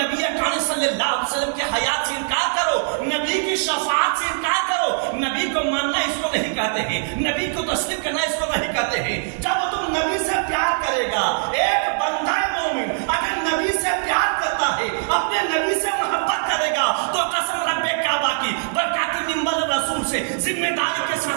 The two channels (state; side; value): silent; left; digital silence